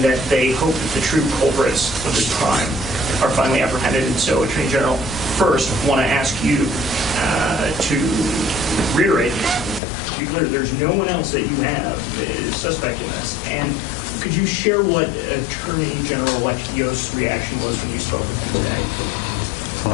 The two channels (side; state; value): right; drops out; at 9.8 s